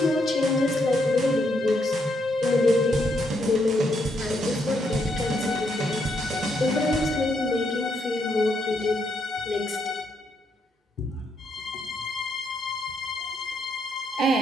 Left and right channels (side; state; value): both; normal; correlation 0.77